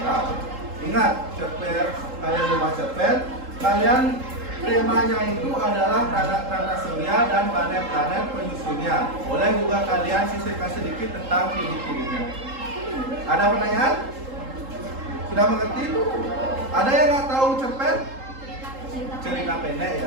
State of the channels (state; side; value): late; left; 3.8 ms